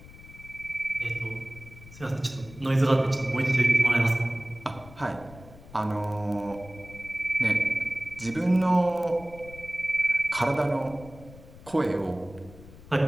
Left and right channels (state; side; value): noise; left; rumble, 19 dB below the sound